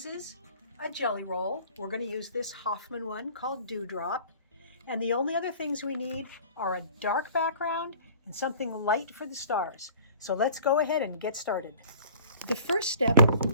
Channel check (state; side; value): inverted; both; correlation -0.47